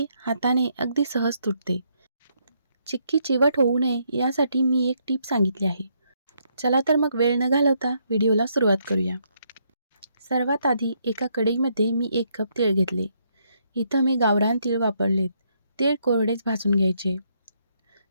हाताने अगदी सहज तुटते. चिक्की चिवट होऊ नये यासाठी मी एक टीप सांगितली आहे. चला तर मग वेळ न घालवता व्हिडिओला सुरुवात करूया. सर्वात आधी एका कढईमध्ये मी 1 कप तीळ घेतले. इथं मी गावरान तीळ वापरलेत. तीळ कोरडेच भाजून घ्यायचे.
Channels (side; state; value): both; inverted; correlation -0.74